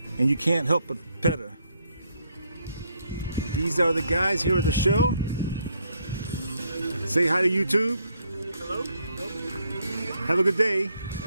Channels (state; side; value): inverted; both; correlation -0.72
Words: and you can't help but pet her. These are the guys here at the show. Say hi to YouTube. Hello? Have a good day.